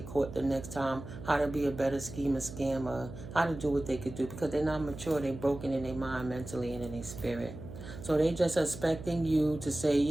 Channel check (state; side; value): noise; right; hum, 12 dB below the sound